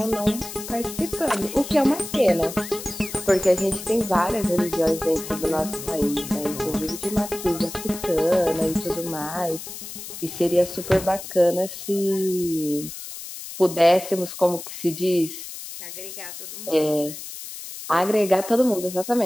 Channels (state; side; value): noise; left; hiss, 11 dB below the sound